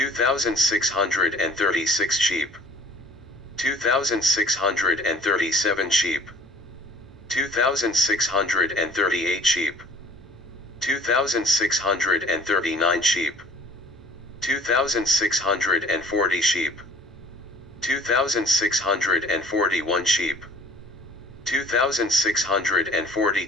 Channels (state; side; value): normal; both; correlation 0.51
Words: sheep, 2,637 sheep, 2,638 sheep, 2,639 sheep, 2,640 sheep, 2,641 sheep,